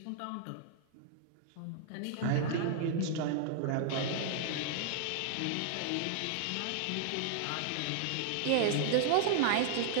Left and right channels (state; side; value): different; both; correlation -0.01